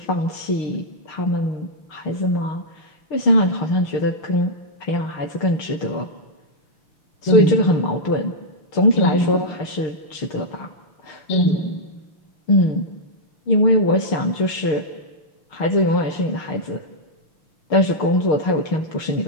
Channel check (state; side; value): late; right; 6.5 ms